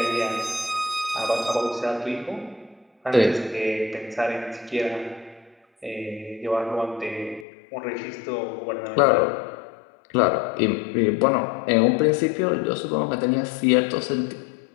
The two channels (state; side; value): drops out; right; at 7.5 s